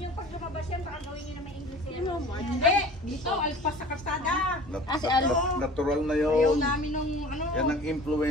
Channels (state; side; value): normal; both; correlation 0.42